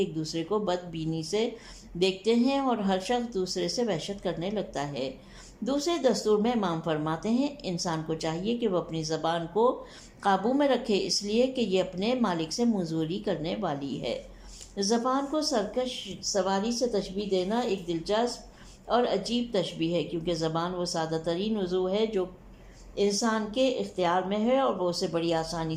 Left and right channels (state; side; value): identical; both; correlation 1.00